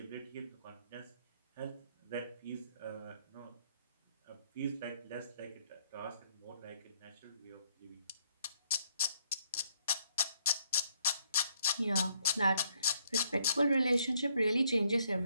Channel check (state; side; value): inverted; both; correlation -0.70